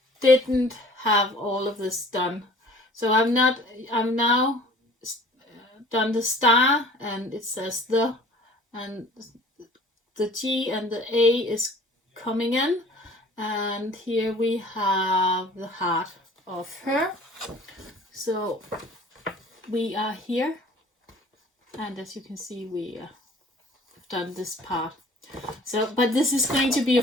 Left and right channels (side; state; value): both; normal; correlation 0.49